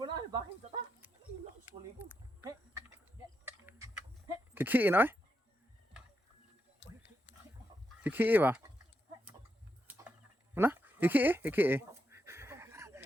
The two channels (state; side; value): normal; both; correlation 0.84